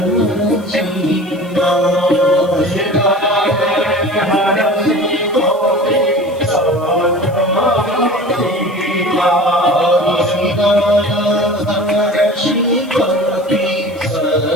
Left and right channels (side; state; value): left; noise; hiss, 27 dB below the sound